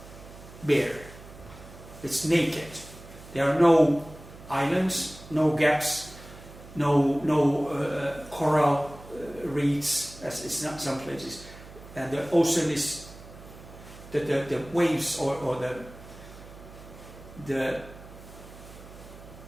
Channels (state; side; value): noise; right; hum, 18 dB below the sound